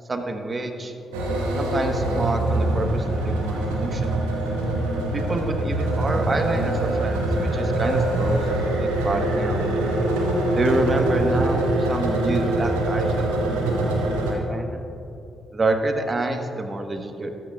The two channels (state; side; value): normal; both; correlation 0.73